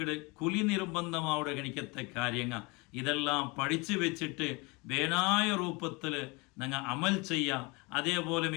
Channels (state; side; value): quieter; right; 27.1 dB